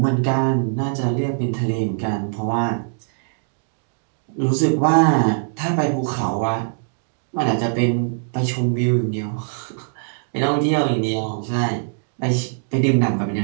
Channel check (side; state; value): left; silent; digital silence